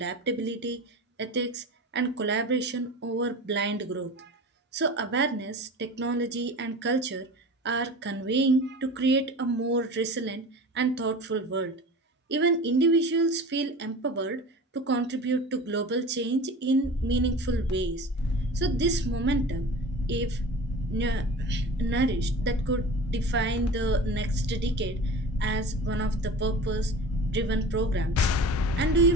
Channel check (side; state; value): both; normal; correlation 0.36